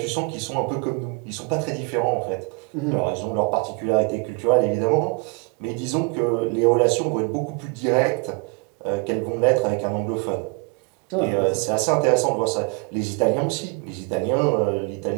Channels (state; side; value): quieter; left; 33.6 dB